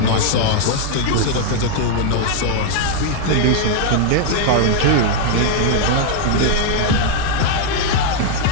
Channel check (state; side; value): different; both; correlation 0.00